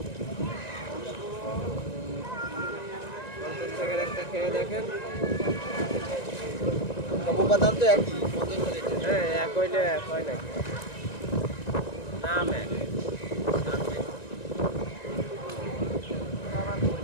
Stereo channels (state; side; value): late; right; 1.9 ms